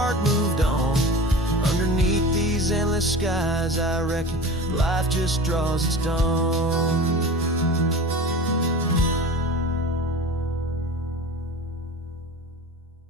moved on. Underneath these endless skies, I reckon life just draws its dawn.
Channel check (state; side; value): normal; both; correlation 0.35